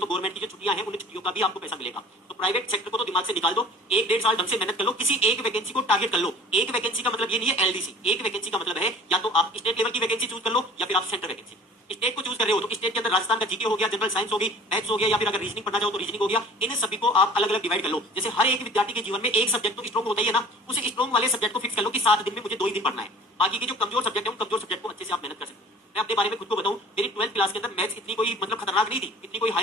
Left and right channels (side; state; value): both; normal; correlation 0.46